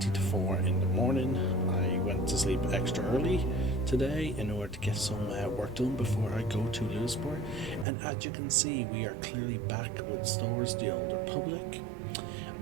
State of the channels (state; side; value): drops out; left; at 7.9 s